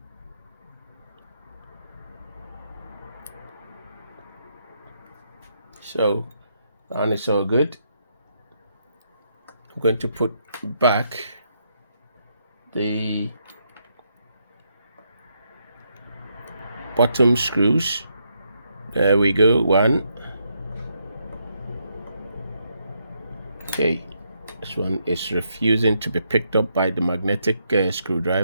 So and it's all good. I'm going to put back the bottom screws. There we go, one. Okay, this one is refusing to be picked up by the magnetic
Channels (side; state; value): both; inverted; correlation -0.78